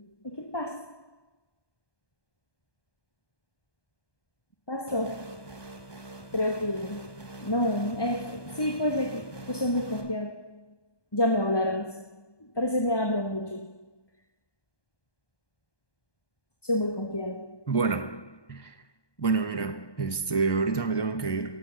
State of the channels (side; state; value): right; late; 1.2 ms